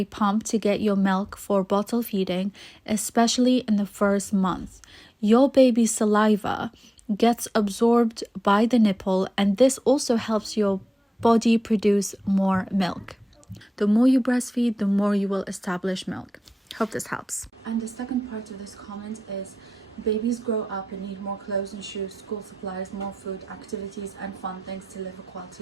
pump to get your milk for bottle feeding, especially in the first month. Your baby's saliva gets absorbed by the nipple and this also helps your body produce more milk. The more you breastfeed, the more you will establish milk. Hope this helps. And the second part of this comment is babies grow up and need more clothes and shoes, school supplies, more food, activities and fun things to live a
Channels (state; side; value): normal; both; correlation 0.94